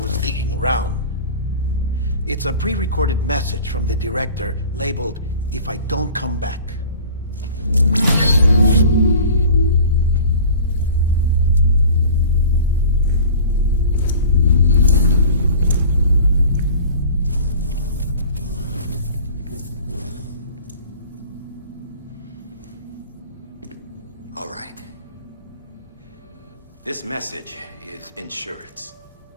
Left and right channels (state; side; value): inverted; both; correlation -0.42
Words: digging around. It's a pre-recorded message from the director labeled, "If I don't come back." All right. This message is insurance,